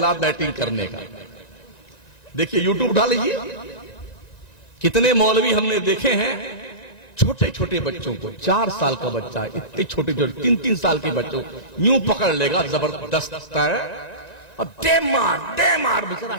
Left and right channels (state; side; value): late; right; 1.9 ms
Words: बैटिंग करने का। देखिए यूट्यूब उठा लीजिए, कितने मौलवी हमने देखे हैं, छोटे छोटे बच्चों को, 4 साल का बच्चा है, इतने छोटे छोटे 3-3 साल के बच्चों यूं पकड़ लेगा, जबरदस्त है, और दे मार बेचारा